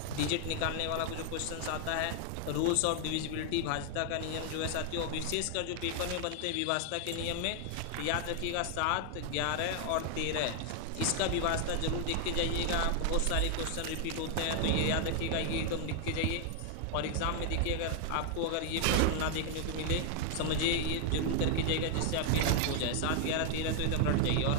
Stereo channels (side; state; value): both; different; correlation 0.00